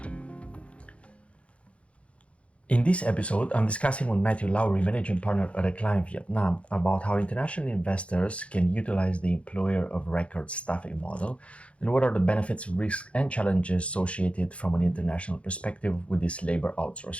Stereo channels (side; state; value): right; late; 0.062 ms